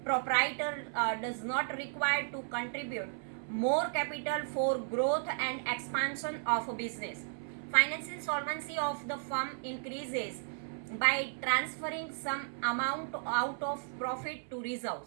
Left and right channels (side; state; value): left; silent; 55 dB below the other